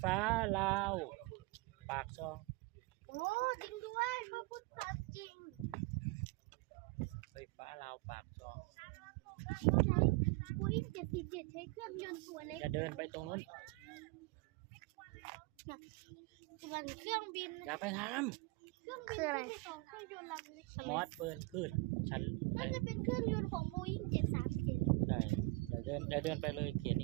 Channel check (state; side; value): quieter; left; 24.2 dB